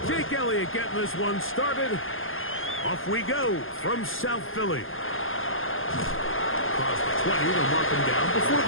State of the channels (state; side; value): late; right; 0.59 ms